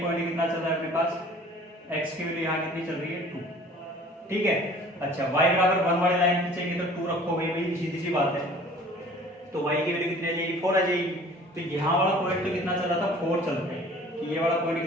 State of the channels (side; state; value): both; normal; correlation 0.48